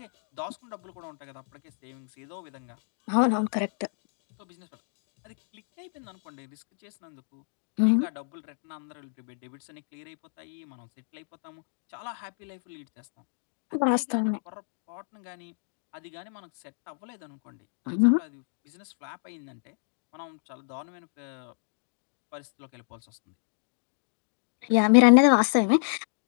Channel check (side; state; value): right; silent; digital silence